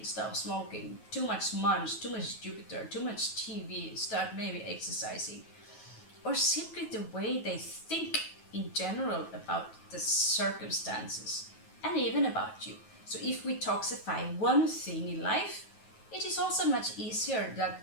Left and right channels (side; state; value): right; late; 9.3 ms